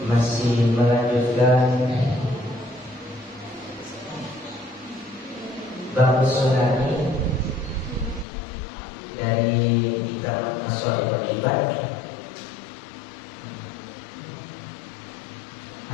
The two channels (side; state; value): right; drops out; at 8.2 s